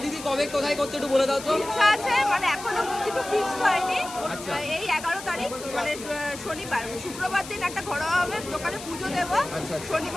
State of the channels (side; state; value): left; noise; hiss, 13 dB below the sound